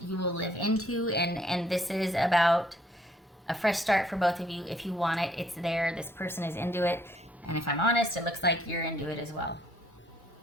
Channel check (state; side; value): normal; both; correlation 0.65